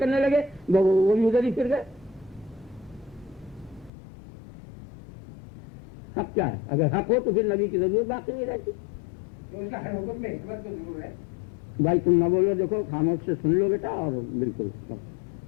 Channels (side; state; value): right; drops out; at 3.9 s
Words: لگے، وہ بھی ادھر ہی پھر گئے۔ حق کیا ہے؟ اگر حق ہو تو پھر نبی کی ضرورت باقی نہیں رہتی۔ اس کا ہر حکم میں حکمت تو ضرور ہے۔ بھائی تم نہ بولو، دیکھو خاموش سے سن لو بیٹا، اور بالکل